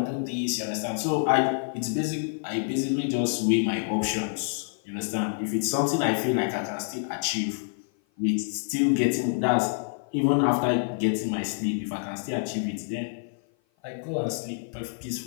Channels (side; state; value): right; silent; 55 dB below the other